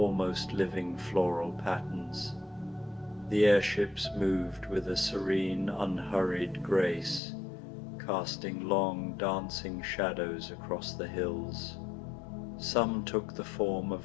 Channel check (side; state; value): right; drops out; at 7.2 s